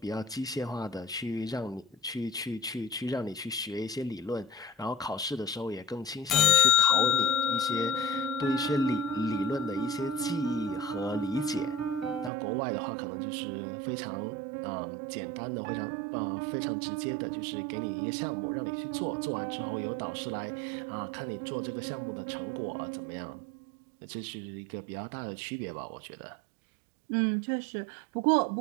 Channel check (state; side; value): drops out; left; at 12.3 s